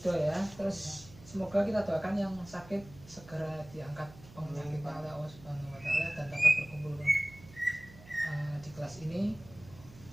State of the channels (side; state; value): right; noise; hum, 20 dB below the sound